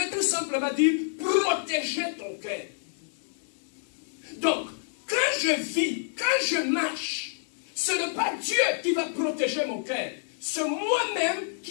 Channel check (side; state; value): right; silent; digital silence